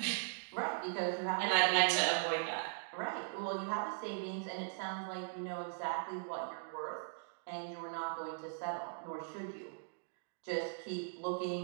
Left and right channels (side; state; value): left; silent; digital silence